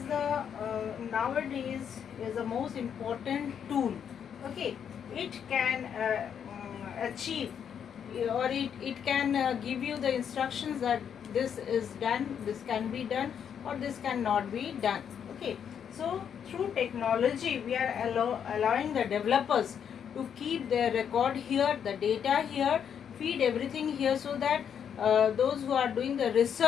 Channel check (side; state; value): right; quieter; 8.1 dB